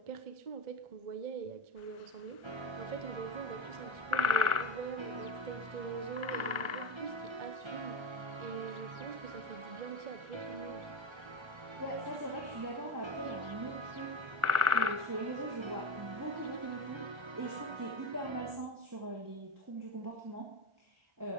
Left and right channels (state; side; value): late; left; 1.4 ms